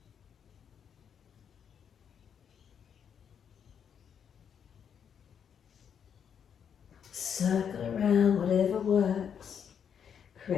Circle around, whatever works.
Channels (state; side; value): quieter; right; 7.8 dB